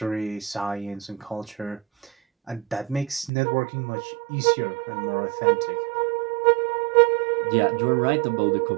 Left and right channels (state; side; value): drops out; left; at 3.3 s